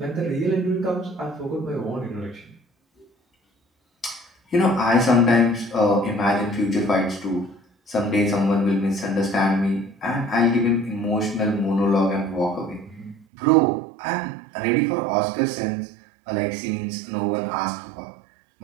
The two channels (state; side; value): drops out; left; at 13.2 s